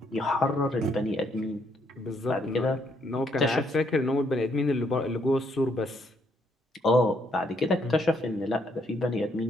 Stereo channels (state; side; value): normal; both; correlation 0.71